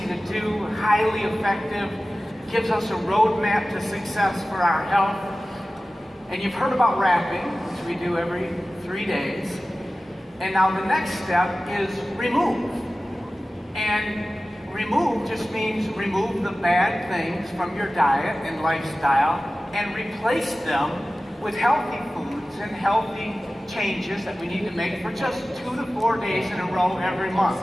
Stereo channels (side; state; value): both; normal; correlation 0.96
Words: to do, highly effective, gives us a roadmap to success for our health. And you've heard about wrapping, which we do every 3 days. And now the next step is remove. And remove just means remove the bad things from your diet and lifestyle and replace them with healthy foods and healthy changes that we need to make for just 2 to 4 days in a row every